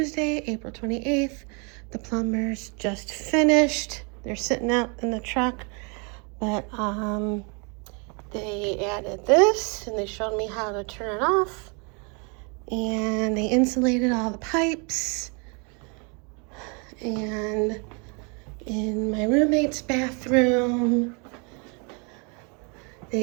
April 28th. The plumbers just finished. They're sitting out in the truck, but they added this and they showed me how to turn it off. And they insulated all the pipes. And in my roommate's bathroom,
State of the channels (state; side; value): quieter; left; 33.8 dB